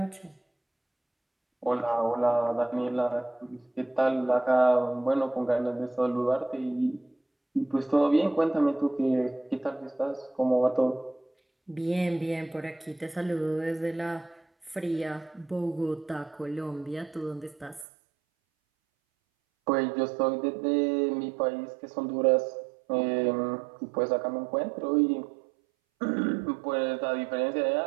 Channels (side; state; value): left; drops out; at 17.9 s